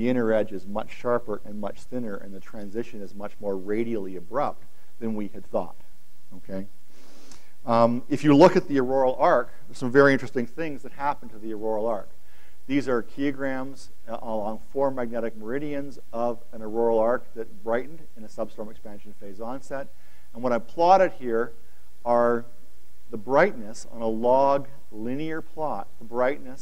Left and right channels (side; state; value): both; identical; correlation 1.00